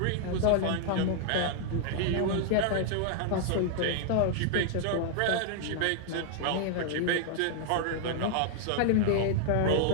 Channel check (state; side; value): different; both; correlation -0.01